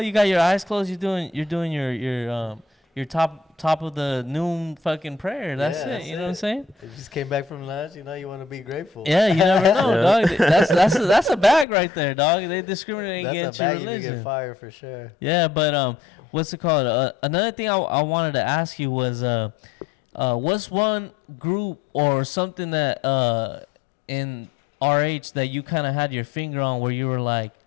got your eyes closed. You're doing your top of the noon fucking prayer. That's Yeah, it. that's You know what I'm it. saying? You just came back from lunch. You know you want to be grateful. Yeah, you never know, Yeah. dog. That's a bag right there, dog. They discriminate That's against a your bag you can religion. get fired for sure. Yeah, but what's it called? Another thing I wanted to ask you was what's one group or something that in RH that you kind of had your finger on where you were like,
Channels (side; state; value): right; drops out; at 11.7 s